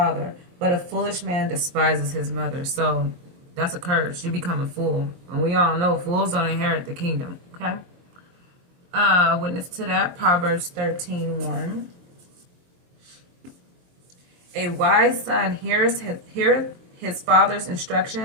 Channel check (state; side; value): late; left; 23 ms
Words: but a foolish man despises his mother. So, that's a curse. You become a fool. And we all know fools don't inherit the kingdom. Okay? Witness to that. Proverbs 13:1. A wise son heareth his father's